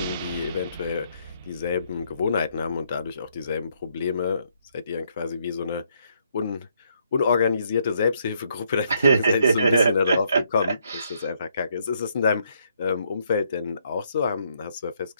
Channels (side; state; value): both; inverted; correlation -0.73